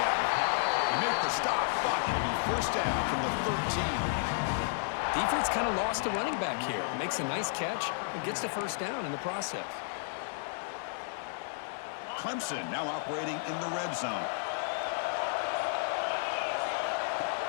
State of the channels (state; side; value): silent; right; digital silence